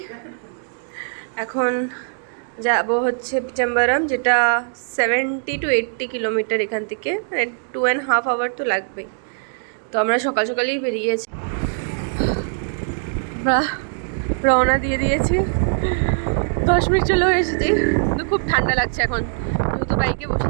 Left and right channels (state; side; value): silent; left; digital silence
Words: এখন যাব হচ্ছে পিচাম্বারাম, যেটা 70 to 80 কিলোমিটার এখান থেকে, মানে 2.5 আওয়ার তো লাগবেই। তো আমরা সকাল সকালেই বেরিয়েছি, রওনা দিয়ে দিয়েছি। 10 মিনিট চলেও এসেছি, কিন্তু খুব ঠান্ডা লাগছে এখন, যেহেতু বাইকে বসে